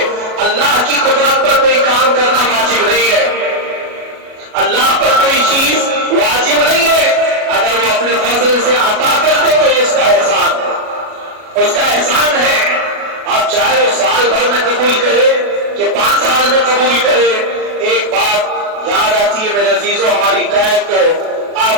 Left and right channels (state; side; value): late; left; 37 ms